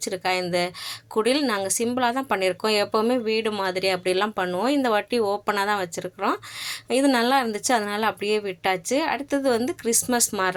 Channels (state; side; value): identical; both; correlation 1.00